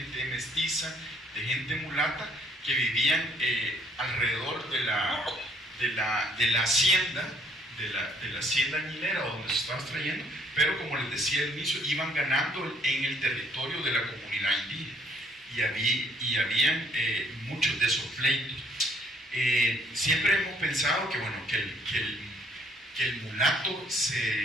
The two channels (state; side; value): normal; both; correlation 0.64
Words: mestiza, de gente mulata, que vivían alrededor de la hacienda, de la hacienda añilera donde se estaba extrayendo, pero como les decía al inicio, iban ganando en el territorio de la comunidad indígena y habían muchos de esos pleitos. Siempre hemos pensado que, bueno, que el mulato